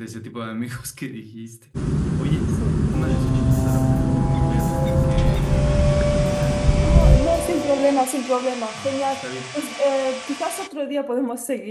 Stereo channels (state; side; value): identical; both; correlation 1.00